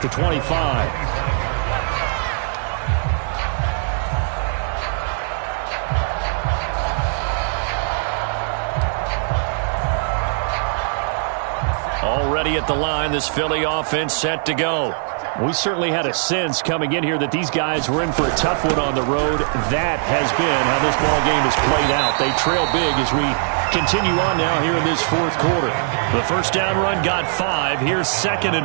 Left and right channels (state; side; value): silent; left; digital silence